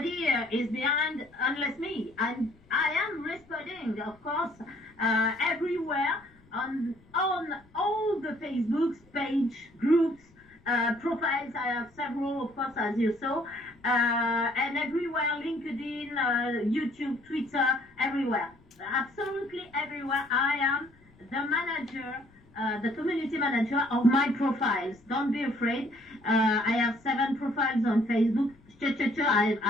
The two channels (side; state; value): left; noise; rumble, 29 dB below the sound